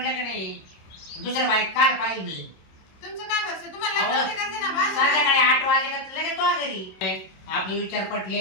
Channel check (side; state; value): right; late; 27 ms